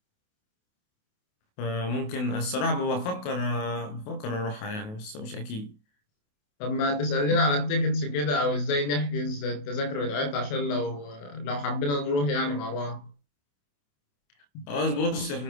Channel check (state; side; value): late; right; 28 ms